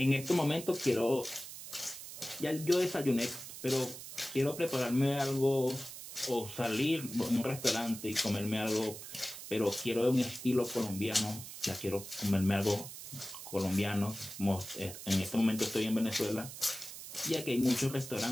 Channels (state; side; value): noise; right; hiss, 11 dB below the sound